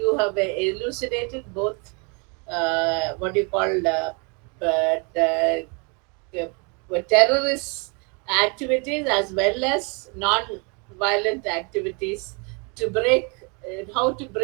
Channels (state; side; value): quieter; left; 33.6 dB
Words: have elucidated both what you call but, terrorist activities as well as non-violent activities to break, how to